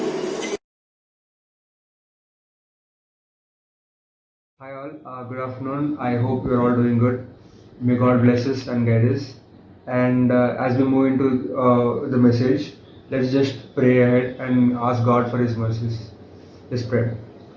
Hi all, good afternoon. I hope you're all doing good. May God bless us and guide us. And as we move into the message, let's just pray ahead and ask God for His mercies. Let's pray.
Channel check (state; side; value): identical; both; correlation 1.00